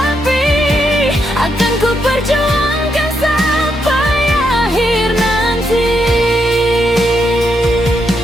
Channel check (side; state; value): both; normal; correlation 0.80